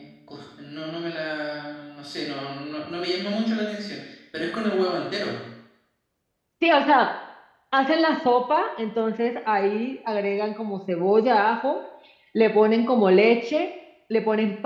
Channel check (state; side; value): identical; both; correlation 1.00